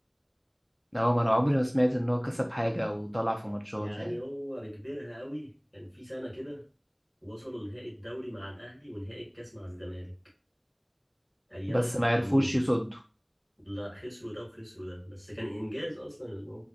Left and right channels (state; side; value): identical; both; correlation 1.00